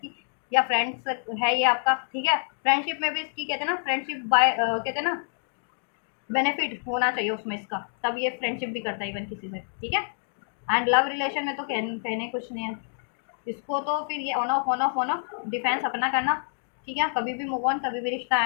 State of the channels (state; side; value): silent; right; digital silence